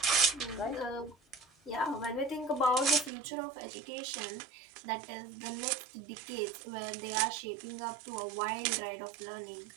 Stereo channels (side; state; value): left; drops out; at 3.1 s